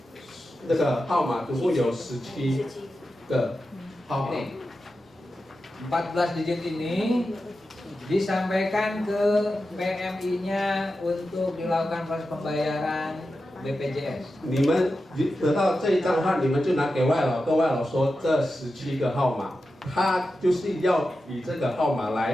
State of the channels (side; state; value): both; normal; correlation 0.91